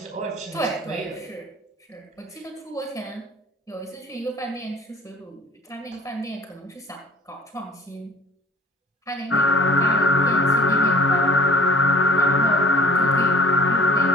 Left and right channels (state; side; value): normal; both; correlation 0.50